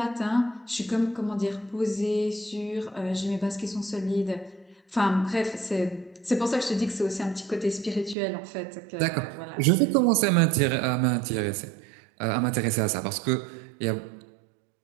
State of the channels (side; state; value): left; drops out; at 8.2 s